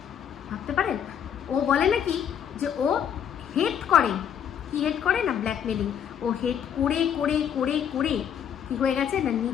ভাবতে পারেন, ও বলে নাকি যে ও হেট করে, কি হেট করে না, ব্ল্যাকমেলিং। ও হেট করে করে করে করে কি হয়ে গেছে না,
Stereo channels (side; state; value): right; quieter; 8.7 dB